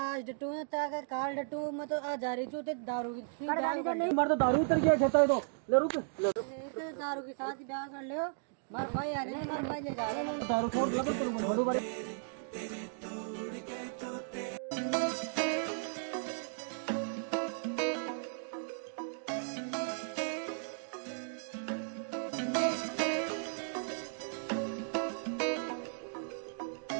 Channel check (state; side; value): silent; left; digital silence